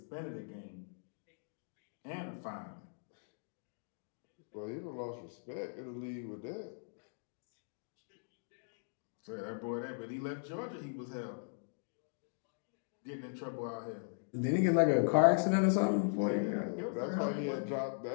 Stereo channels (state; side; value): silent; right; digital silence